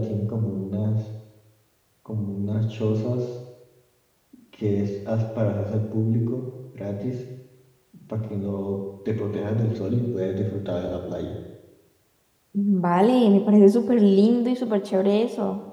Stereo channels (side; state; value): both; identical; correlation 1.00